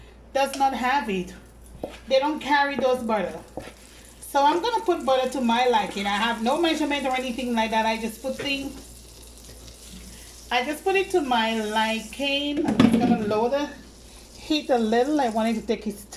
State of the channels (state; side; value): identical; both; correlation 1.00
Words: does not have it. They don't carry those butter. So I'm gonna put butter to my liking. I have no measurement or anything like that. I just put it to my liking. I'm just gonna lower the heat a little. I want it to take its